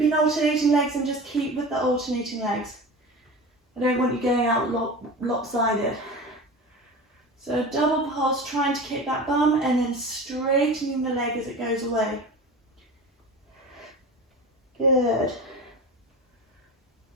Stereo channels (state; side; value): normal; both; correlation 0.32